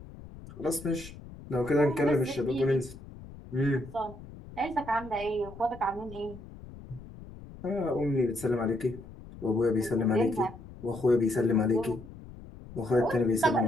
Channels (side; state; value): left; noise; rumble, 16 dB below the sound